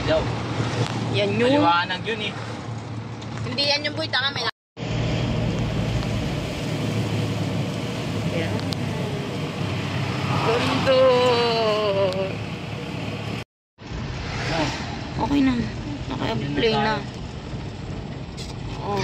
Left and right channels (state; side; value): identical; both; correlation 1.00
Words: Yan yun. Maliwanag yun eh. Hindi yan yung boy, tanga, may... Ayan. Ganda. Okay na. Naka-play na. Oh,